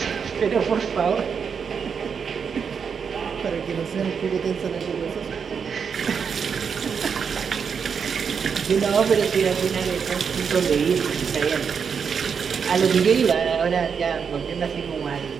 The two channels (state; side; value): quieter; left; 6.5 dB